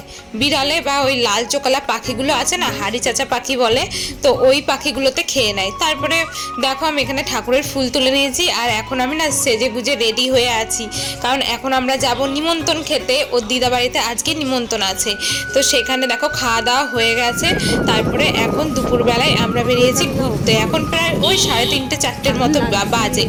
বিড়ালে বা ওই লাল চোকালা পাখিগুলো আছে না, হাড়ি চাচা পাখি বলে, তো ওই পাখিগুলোতে খেয়ে নেয়। তারপরে দেখো আমি এখানে ঠাকুরের ফুল তুলে নিয়েছি, আর এখন আমি না সেজে গুজে রেডি হয়ে আছি, কারণ এখন আমরা যাব নিমন্ত্রণ খেতে। ওর দিদা বাড়িতে আজকে নিমন্ত্রণ আছে, তো সেখানে দেখো খাওয়া দাওয়া হয়ে গেছে। তারপরে এখন দুপুরবেলায় আমরা বেরিয়েছি ঘুরতে। এখন প্রায় ওই 3:30 4টের মতো বাজে।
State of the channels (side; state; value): both; identical; correlation 1.00